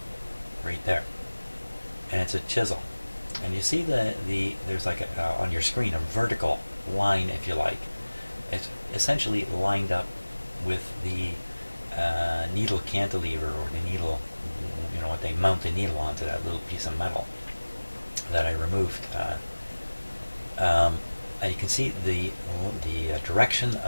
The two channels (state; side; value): inverted; both; correlation -1.00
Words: Right there. And it's a chisel. And you see there's like on your screen a vertical line, if you like. It's essentially lined up with the needle cantilever, or the needle, what they mount the needle onto, that little piece of metal that I removed. You can see the direction